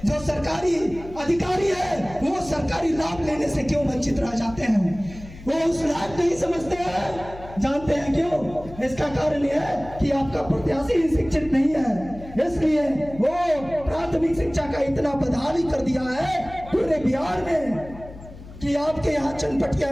जो सरकारी अधिकारी है वो सरकारी लाभ लेने से क्यों वंचित रह जाते हैं? वो उस लायक नहीं समझते हैं। जानते हैं क्यों? इसका कारण यह है कि आपका प्रत्याशी ही शिक्षित नहीं है, इसलिए वो प्राथमिक शिक्षा का इतना बदहाली कर दिया है पूरे बिहार में कि आपके यहाँ चनपटिया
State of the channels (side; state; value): left; noise; hum, 16 dB below the sound